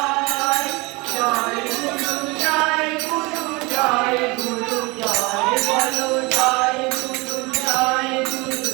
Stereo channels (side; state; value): left; quieter; 25.6 dB